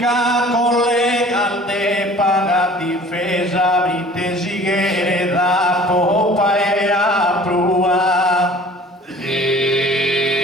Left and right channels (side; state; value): both; normal; correlation 0.48